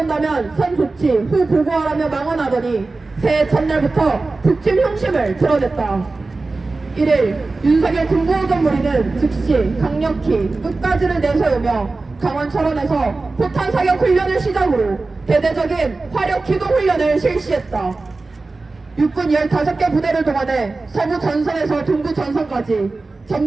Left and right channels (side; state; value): left; quieter; 3.6 dB